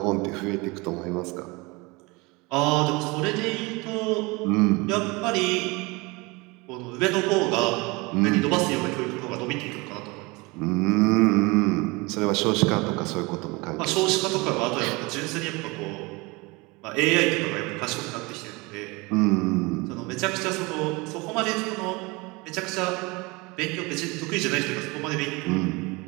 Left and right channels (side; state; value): left; quieter; 25.3 dB